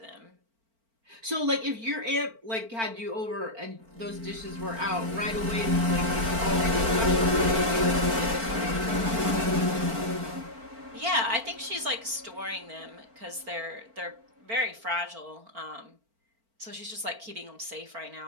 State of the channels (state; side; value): late; left; 4.4 ms